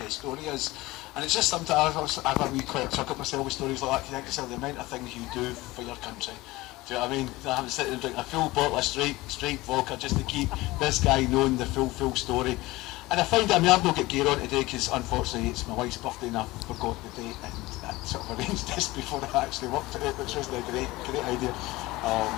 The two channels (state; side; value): quieter; right; 19.9 dB